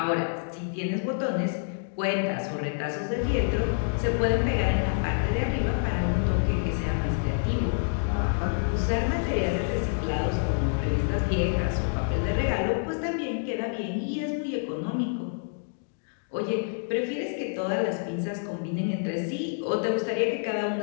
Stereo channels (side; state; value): right; silent; digital silence